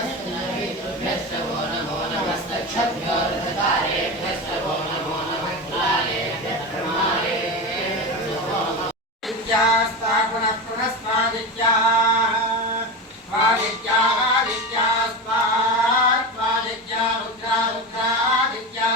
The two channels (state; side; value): normal; both; correlation 0.22